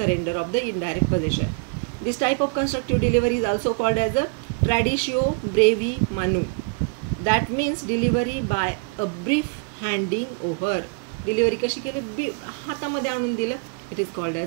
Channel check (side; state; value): left; quieter; 34.1 dB